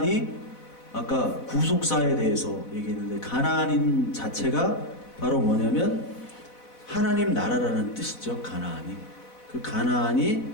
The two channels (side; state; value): right; late; 4.1 ms